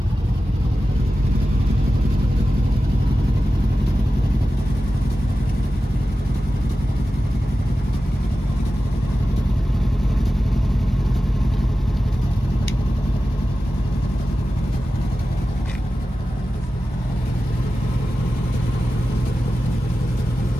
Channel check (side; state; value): both; normal; correlation 0.94